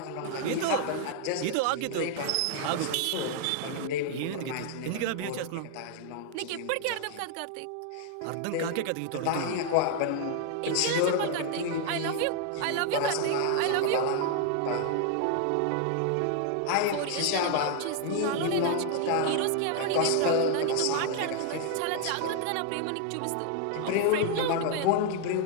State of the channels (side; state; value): both; different; correlation 0.00